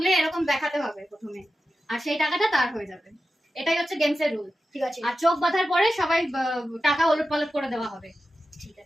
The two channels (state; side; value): normal; both; correlation 0.92